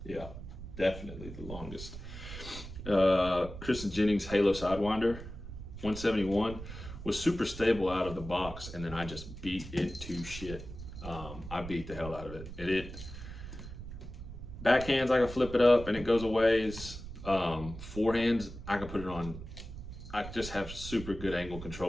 Yeah, definitely the longest. Kristen Jennings Halo Sidewinder 171 was super stable out of the box, and then I just beat it to shit. I beat the hell out of it. Backhands, I can flip it up and it goes a ways. Forehands, I can put it on. I just have super good angle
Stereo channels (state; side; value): noise; right; rumble, 11 dB below the sound